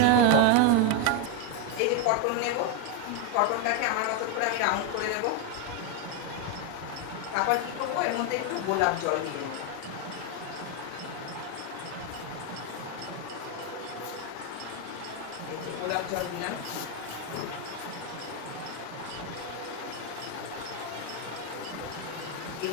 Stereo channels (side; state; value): both; different; correlation 0.02